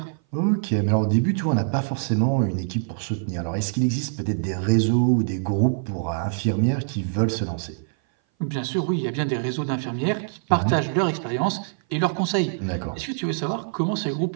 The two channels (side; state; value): left; silent; 58 dB below the other